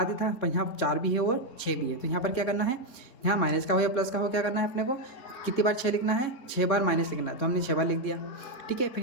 ही था, पर यहाँ 4 भी है और 6 भी है। तो यहाँ पर क्या करना है, यहाँ माइनस का हो या प्लस का हो, क्या करना है अपने को, कितनी बार 6 लिखना है, 6 बार माइनस लिखना है, तो हमने 6 बार लिख दिया। ठीक है,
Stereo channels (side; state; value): right; late; 4.0 ms